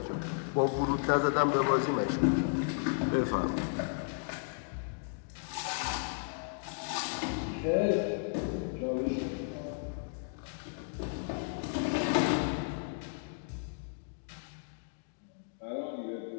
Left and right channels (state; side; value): silent; right; digital silence